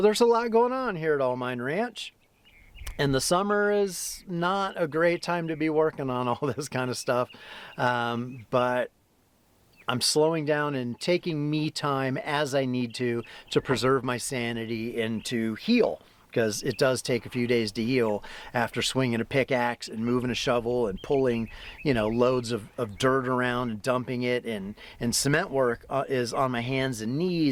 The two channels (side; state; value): both; identical; correlation 1.00